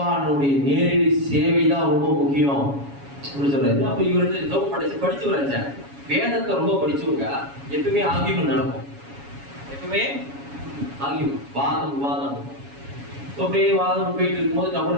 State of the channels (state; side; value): late; left; 7.2 ms